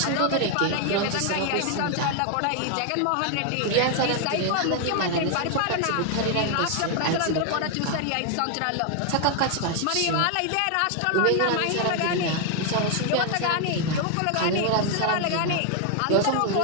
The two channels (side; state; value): both; different; correlation 0.00